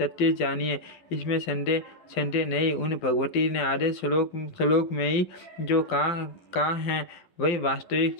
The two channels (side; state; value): right; late; 12 ms